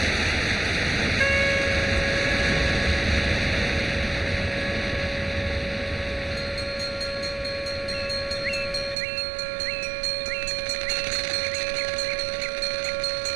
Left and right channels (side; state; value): left; drops out; at 9.0 s